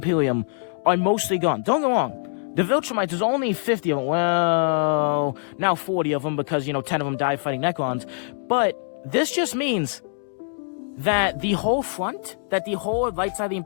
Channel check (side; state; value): right; silent; digital silence